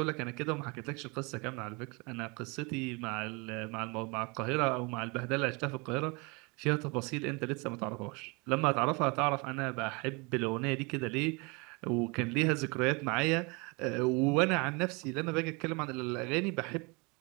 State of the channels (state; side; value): quieter; left; 29.0 dB